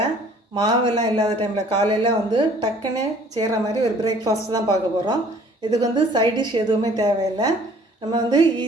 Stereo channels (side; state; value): both; normal; correlation 0.55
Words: மாவெல்லாம் இல்லாத டைம்ல காலையில டக்குன்னு செய்யற மாதிரி ஒரு பிரேக்ஃபாஸ்ட் தான் பார்க்க போறோம். இதுக்கு சைட் டிஷ் எதுவுமே தேவையில்லை. நம்ம